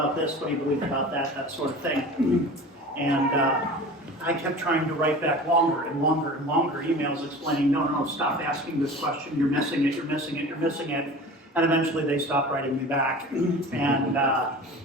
this? What do you believe about that? That sort of thing. And I kept trying to write back longer and longer and longer emails explaining, no, stop asking this question. You're missing it, you're missing it, you're missing it. And eventually they stopped writing me back. And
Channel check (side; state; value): both; normal; correlation 0.37